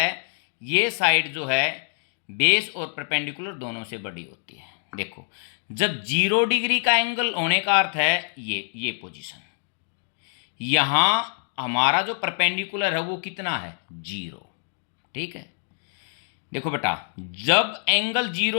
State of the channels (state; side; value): silent; right; digital silence